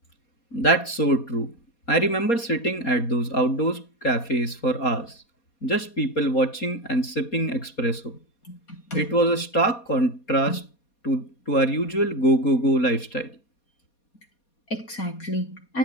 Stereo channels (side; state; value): right; late; 4.2 ms